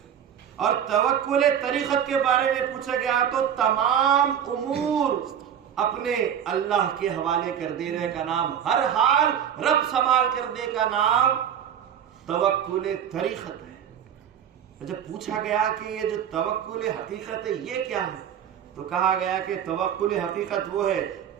اور توکل طریقت کے بارے میں پوچھا گیا تو تمام امور اپنے اللہ کے حوالے کر دینے کا نام، ہر حال رب سنبھال کرنے کا نام توکل طریقت ہے. جب پوچھا گیا کہ یہ جو توکل حقیقت ہے یہ کیا ہے، تو کہا گیا کہ توکل حقیقت وہ ہے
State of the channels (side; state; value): left; quieter; 9.0 dB